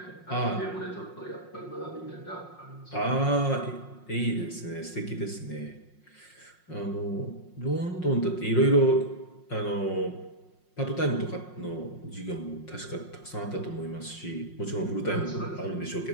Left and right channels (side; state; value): right; late; 5.6 ms